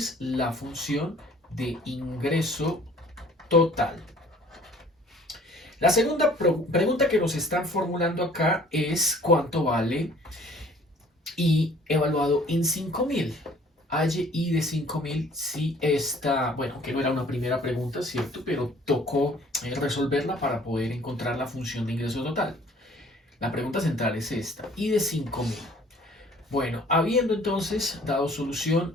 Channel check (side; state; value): both; normal; correlation 0.53